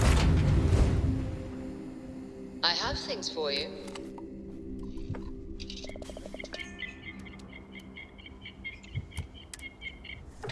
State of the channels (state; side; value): identical; both; correlation 1.00